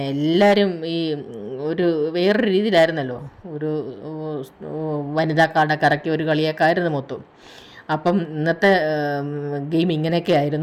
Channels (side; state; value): both; identical; correlation 1.00